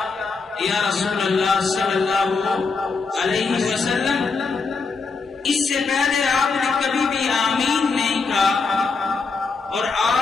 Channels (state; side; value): quieter; right; 4.5 dB